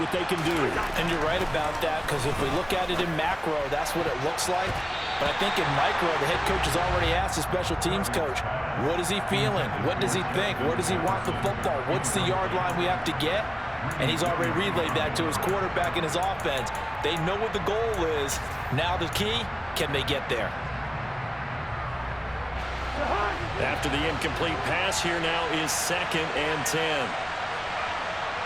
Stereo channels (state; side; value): identical; both; correlation 1.00